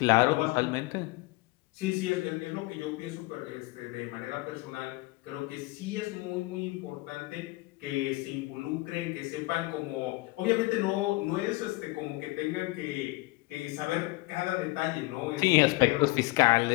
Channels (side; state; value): right; quieter; 22.4 dB